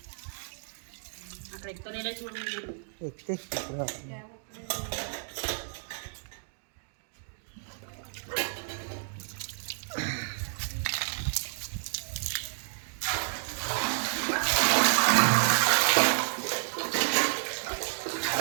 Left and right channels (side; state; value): left; silent; digital silence